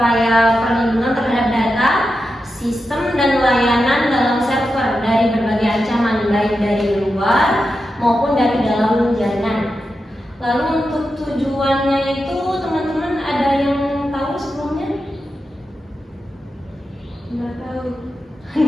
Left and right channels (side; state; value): both; normal; correlation 0.89